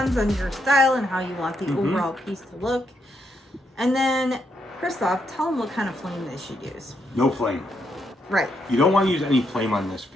on your style and how you want the overall piece to look. And then, Christoph, tell them what kind of flame they should use. No flame. Right. You don't want to use any flame on this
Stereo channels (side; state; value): both; normal; correlation 0.78